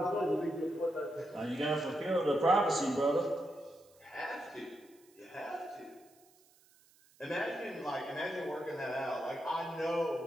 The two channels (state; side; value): noise; right; hiss, 29 dB below the sound